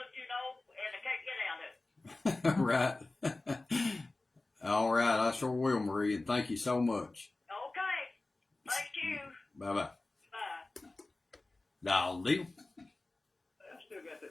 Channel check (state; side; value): quieter; right; 3.1 dB